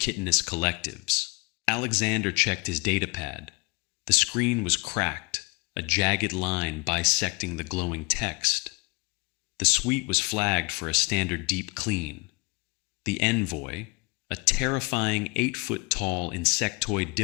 collectives." Alexander checked his datapad. The screen was cracked, a jagged line bisecting the glowing text. The suite was flagged for a standard deep clean. The envoy, a terrifying 8-foot-tall insectoid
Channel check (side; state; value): right; quieter; 29.6 dB